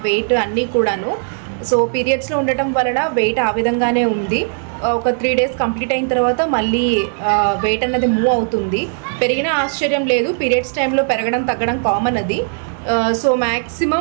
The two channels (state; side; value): silent; left; 68 dB below the other